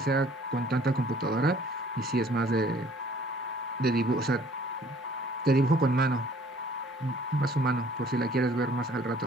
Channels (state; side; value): normal; both; correlation 0.56